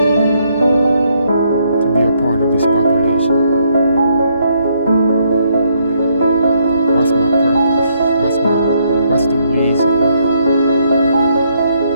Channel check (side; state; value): both; inverted; correlation -0.72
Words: to be a part of this population? What's my purpose? What's the reason why?